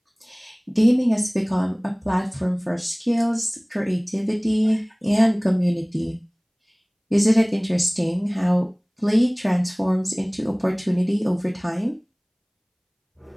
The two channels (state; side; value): identical; both; correlation 1.00